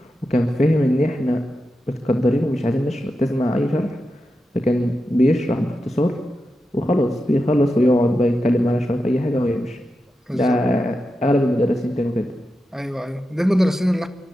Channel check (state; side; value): normal; both; correlation 0.89